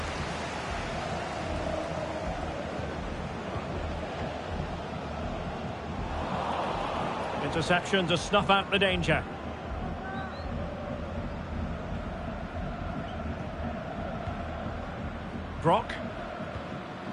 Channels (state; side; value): identical; both; correlation 1.00